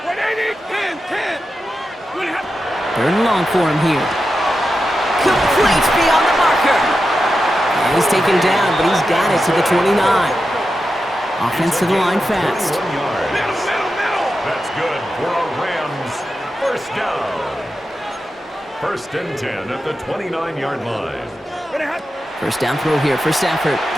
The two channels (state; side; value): normal; both; correlation 0.90